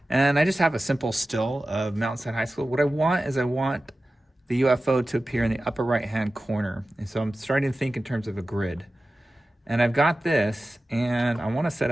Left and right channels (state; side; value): normal; both; correlation 0.95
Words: And I just have a simple still of Mountainside High School. What I want is I want the UFO to appear in the upper right-hand corner. And so I'm starting to think in terms of a grid. And I've got this, and I want to set